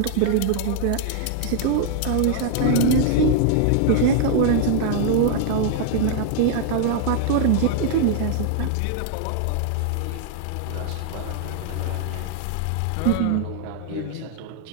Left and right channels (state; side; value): different; both; correlation 0.00